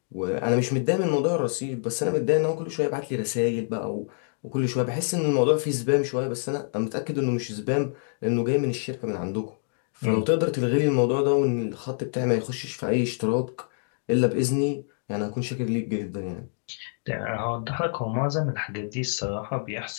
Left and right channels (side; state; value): right; silent; digital silence